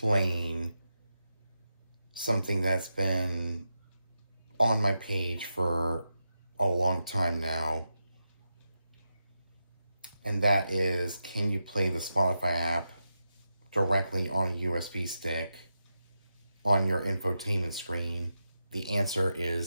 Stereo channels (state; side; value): inverted; both; correlation -0.88